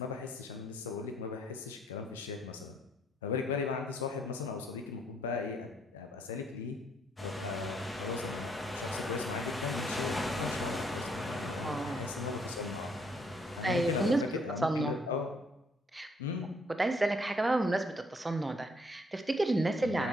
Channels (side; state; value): both; normal; correlation 0.68